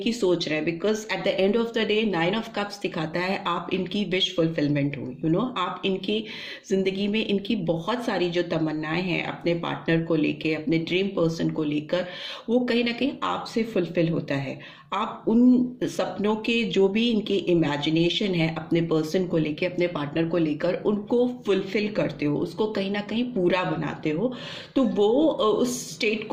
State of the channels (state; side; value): identical; both; correlation 1.00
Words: सोच रहे हैं, because at the end of the day 9 of cups दिखाता है आप इनकी विश फुलफिलमेंट हो, आप इनकी जिंदगी में इनकी बहुत सारी जो तमन्नाएं हैं अपने पार्टनर को लेके, अपने ड्रीम पर्सन को लेकर, वो कहीं ना कहीं आपसे फुलफिल होता है। आप उन सपनों के जो भी इनकी इमेजिनेशन है अपने पर्सन को लेके, अपने पार्टनर को लेकर, उनको फुलफिल करते हो, उसको कहीं ना कहीं पूरा बनाते हो। तो वो उस स्टेट